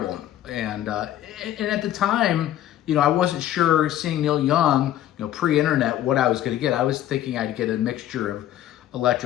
and at the time, I wasn't sure, seeing Neil Young, pre-internet, what I was going to get. I was thinking I'd get a mixture of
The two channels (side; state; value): right; quieter; 12.4 dB